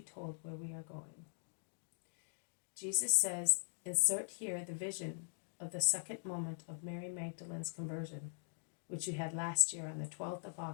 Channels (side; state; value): right; silent; digital silence